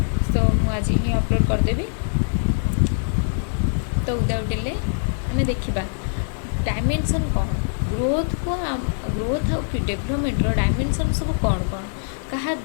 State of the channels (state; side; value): silent; right; 64 dB below the other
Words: तो आज ही अपलोड करदेवी। तो विदाउट डिले आम देखा डायमेंशन कौन ग्रोथ को ग्रोथ आ डेवलपमेंट डायमेंशन सब कौन कौन क्या